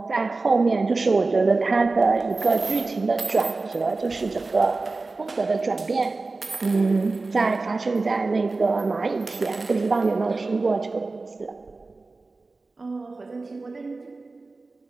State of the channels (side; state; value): left; quieter; 3.6 dB